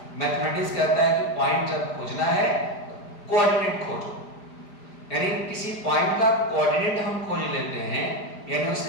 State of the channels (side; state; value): right; late; 5.0 ms